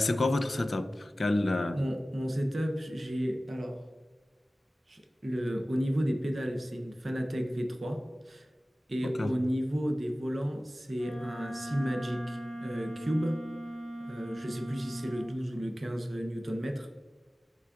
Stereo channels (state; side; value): normal; both; correlation 0.97